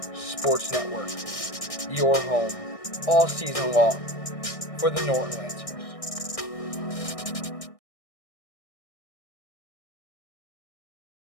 Sports Network, your home all season long for the Norton Lancers.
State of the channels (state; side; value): late; right; 1.6 ms